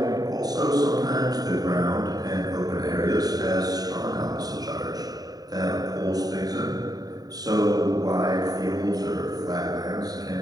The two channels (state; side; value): late; left; 0.18 ms